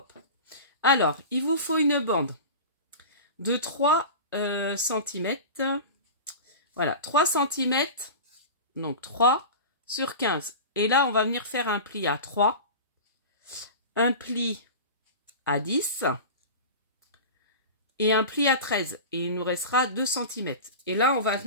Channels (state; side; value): inverted; both; correlation -0.31